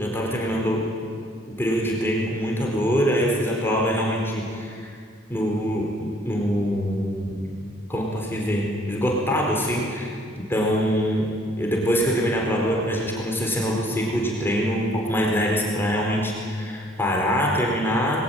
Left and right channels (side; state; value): both; normal; correlation 0.61